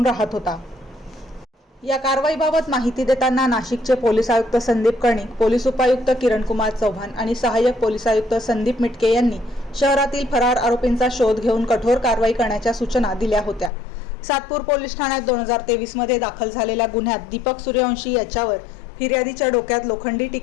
राहत होता। या कारवाईबाबत माहिती देताना नाशिकचे पोलीस आयुक्त संदीप कर्णिक, पोलीस उपायुक्त किरणकुमार चव्हाण आणि सहाय्यक पोलीस आयुक्त संदीप मिटके यांनी शहरातील फरार आरोपींचा शोध घेऊन कठोर कारवाई करण्याच्या सूचना दिल्या होत्या। सातपूर पोलीस ठाण्यात 2023 मध्ये दाखल झालेल्या गुन्ह्यात दीपक सूर्यवंशी याच्यावर फिर्यादीच्या डोक्यात लोखंडी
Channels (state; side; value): drops out; right; at 13.7 s